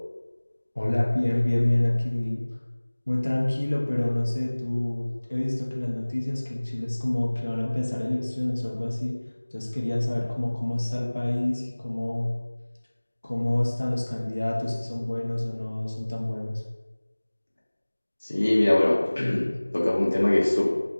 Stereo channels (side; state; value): both; inverted; correlation -1.00